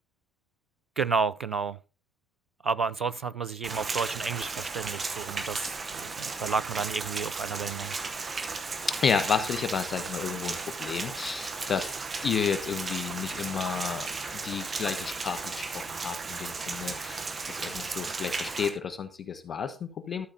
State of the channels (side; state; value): both; normal; correlation 0.68